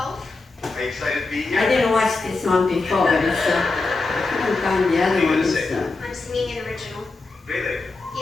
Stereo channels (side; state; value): right; quieter; 3.7 dB